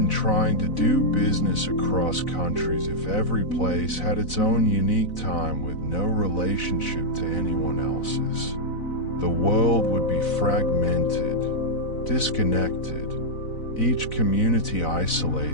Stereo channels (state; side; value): late; right; 4.0 ms